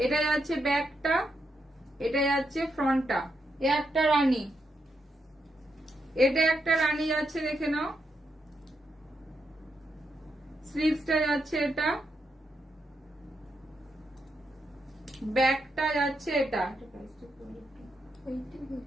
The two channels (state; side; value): normal; both; correlation 0.82